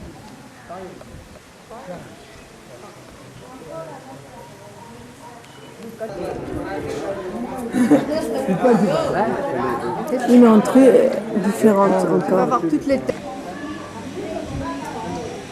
une entrée différente encore.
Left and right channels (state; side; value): identical; both; correlation 1.00